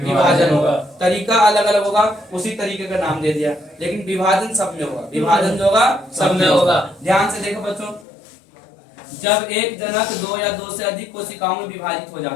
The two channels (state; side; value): drops out; right; at 8.1 s